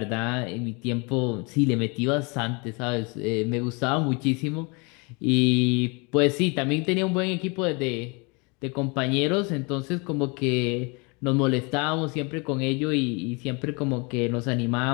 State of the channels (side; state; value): right; quieter; 30.5 dB